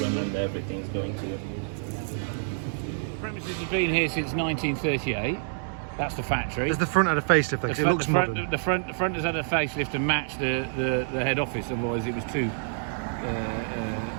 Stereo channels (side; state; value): left; silent; digital silence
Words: everything's going to. The premises have been here since 1938. That's the factory. Has the front had a facelift? Because it looks modern. The front has had a facelift to match the head office. Otherwise, it was too